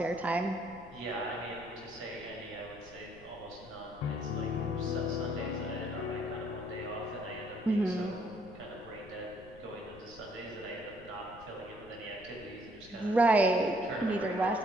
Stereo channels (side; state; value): left; noise; rumble, 20 dB below the sound